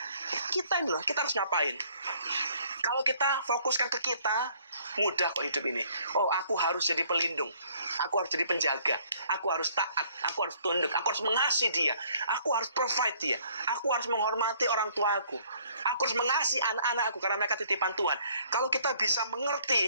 Kita ini loh, kita harus ngapain? Kalau kita fokuskan ke kita, mudah kok hidup ini. Oh, aku harus jadi pelindung, aku harus jadi penjaga, aku harus taat, aku harus tunduk, aku harus mengasihi dia, aku harus provide dia, aku harus menghormati orang tuaku, aku harus mengasihi anak-anakku karena mereka titipan Tuhan. Kalau kita bisa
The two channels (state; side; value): inverted; both; correlation -0.61